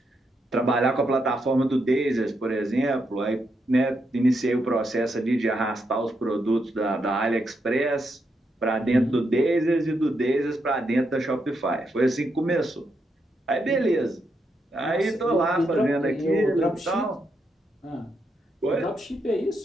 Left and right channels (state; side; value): normal; both; correlation 0.81